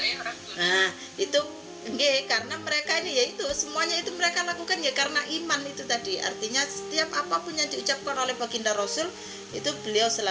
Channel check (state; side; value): identical; both; correlation 1.00